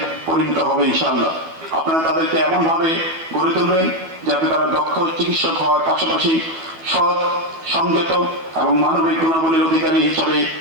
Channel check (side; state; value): left; late; 12 ms